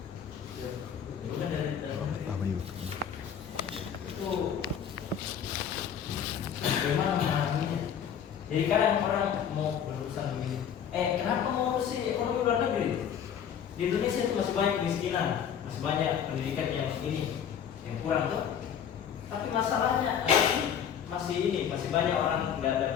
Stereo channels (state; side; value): quieter; right; 8.4 dB